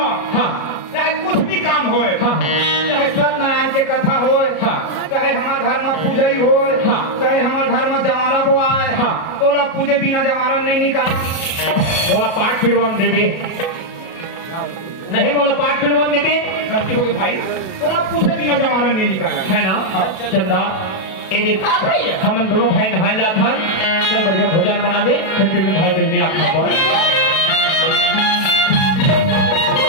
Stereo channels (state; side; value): late; right; 37 ms